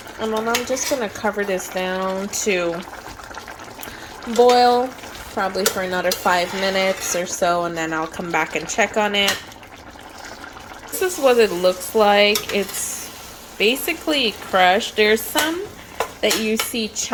And then I'm just going to cover this down to boil probably for another 5 minutes or so, and then I'll come back and check on it. This is what it looks like. It's basically crushed. There's some that you see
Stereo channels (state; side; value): identical; both; correlation 1.00